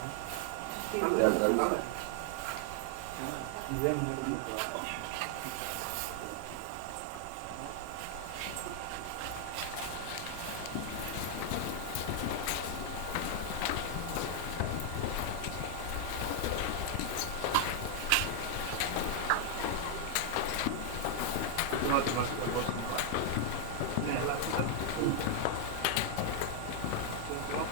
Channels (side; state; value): both; different; correlation 0.00